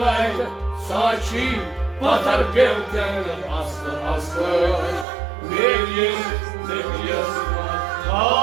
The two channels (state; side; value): drops out; left; at 5.1 s